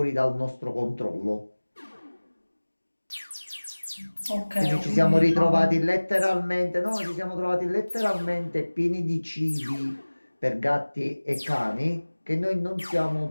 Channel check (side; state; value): both; inverted; correlation -1.00